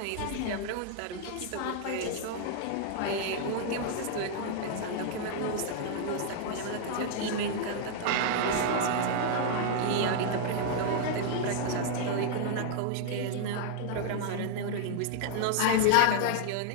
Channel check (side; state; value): both; different; correlation -0.01